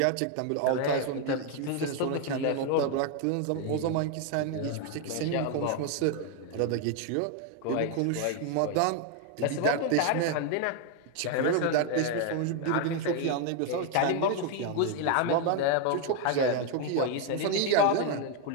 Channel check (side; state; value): both; different; correlation 0.01